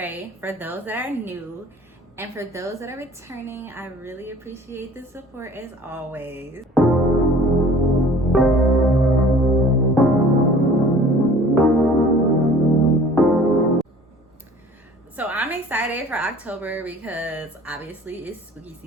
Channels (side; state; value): both; normal; correlation 0.49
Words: For those that are new and for those that are returning, I really appreciate the support as always. So I'm excited for October because obviously it's spooky